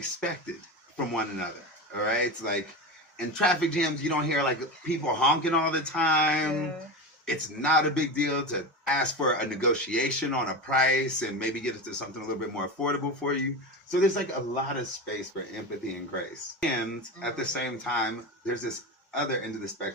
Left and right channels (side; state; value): both; normal; correlation 0.22